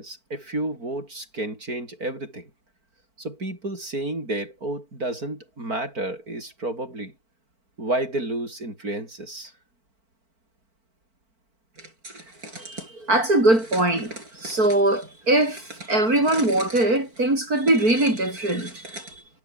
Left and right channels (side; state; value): left; late; 4.5 ms